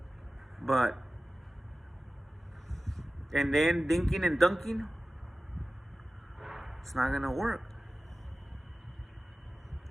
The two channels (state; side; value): normal; both; correlation 0.96